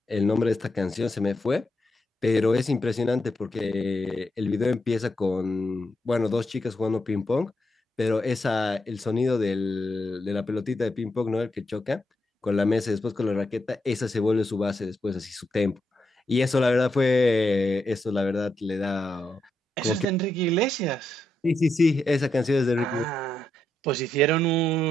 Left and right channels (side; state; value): both; normal; correlation 0.83